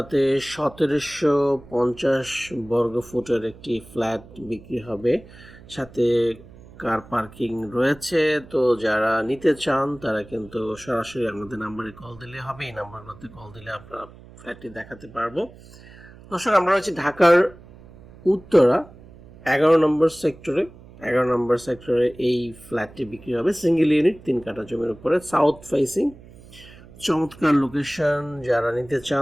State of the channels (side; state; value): right; noise; hum, 21 dB below the sound